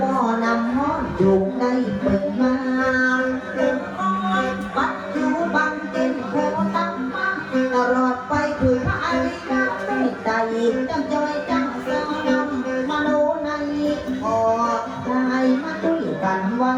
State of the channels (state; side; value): identical; both; correlation 1.00